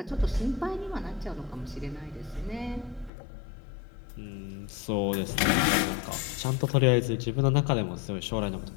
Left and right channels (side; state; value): right; drops out; at 3.1 s